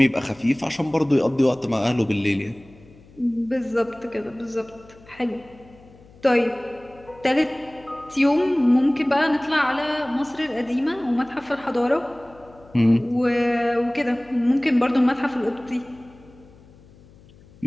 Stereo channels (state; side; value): noise; left; hum, 25 dB below the sound